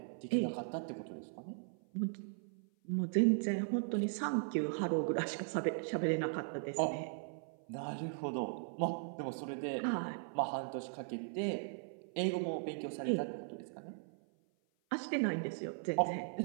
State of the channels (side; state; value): left; silent; 52 dB below the other